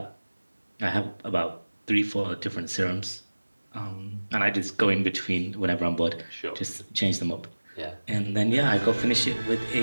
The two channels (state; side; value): inverted; both; correlation -1.00